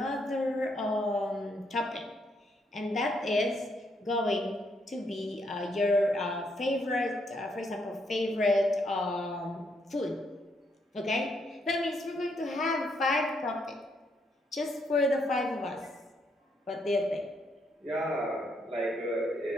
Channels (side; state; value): both; normal; correlation 0.75